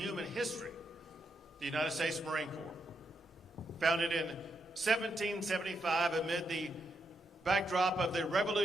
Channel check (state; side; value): normal; both; correlation 0.81